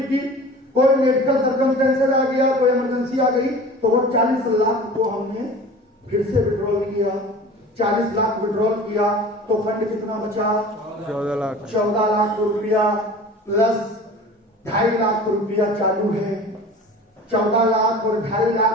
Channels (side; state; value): both; normal; correlation 0.40